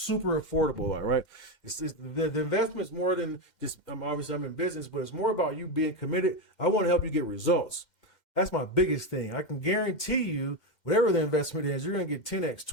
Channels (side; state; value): right; late; 2.2 ms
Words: affordable, all right? It's the investment's more than just, obviously I'm in business, but it's more about you being committed. I want to help you get results. That's my biggest thing. I can guarantee you, whatever the investment is, you're going to get 10x,